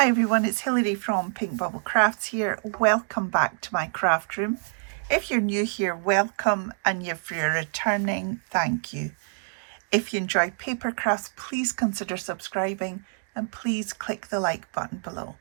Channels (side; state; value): left; silent; 61 dB below the other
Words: everyone, it's Hilary from Pink Bubble Crafts here. Welcome back to my craft room. If you're new here, welcome, and if you're returning, thank you. If you enjoy paper crafts, please consider subscribing and please click the like button below.